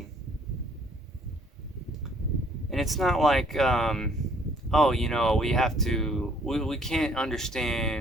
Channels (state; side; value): normal; both; correlation 0.61